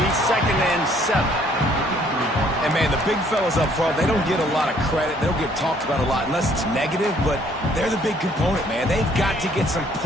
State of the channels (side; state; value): both; normal; correlation 0.62